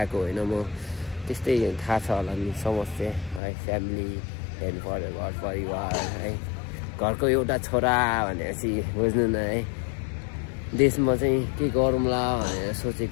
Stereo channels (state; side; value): drops out; right; at 3.4 s